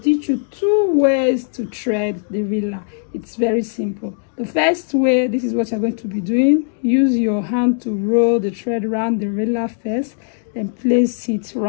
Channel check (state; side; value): silent; right; digital silence